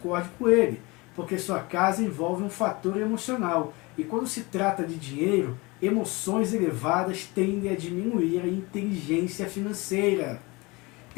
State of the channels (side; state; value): right; quieter; 24.8 dB